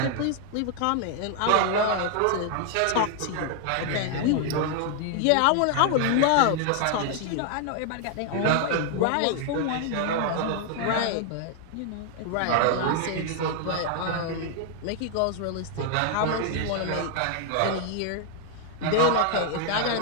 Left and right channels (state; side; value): different; both; correlation 0.00